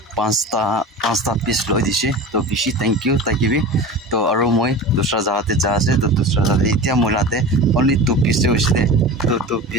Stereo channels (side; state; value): both; normal; correlation 0.32